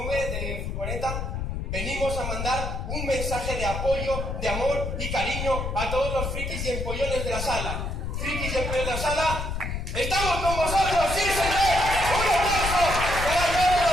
de furgoneta, venimos a mandar un mensaje de apoyo, de amor y cariño a todos los frikis y empollones de la sala. Frikis y empollones de la sala, ¡estamos con vosotros! ¡Sí, señor! ¡Un aplauso para todos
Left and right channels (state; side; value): noise; left; rumble, 4 dB below the sound